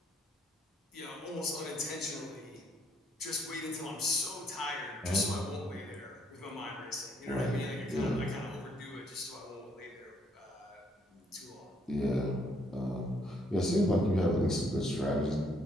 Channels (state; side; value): normal; both; correlation 0.69